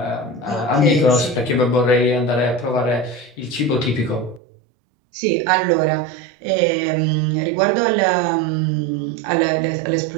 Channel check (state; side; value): drops out; left; at 4.4 s